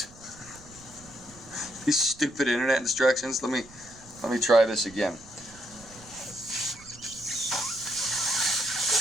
These stupid internet instructions. Let me try this again.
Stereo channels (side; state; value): right; noise; rumble, 22 dB below the sound